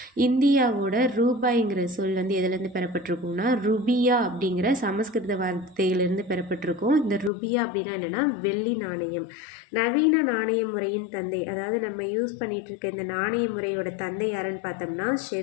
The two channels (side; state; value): right; drops out; at 7.3 s